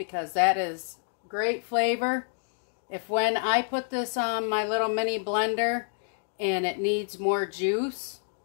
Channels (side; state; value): right; silent; digital silence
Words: that is great flavor. If when I put this on my little mini blender and it needs more juice,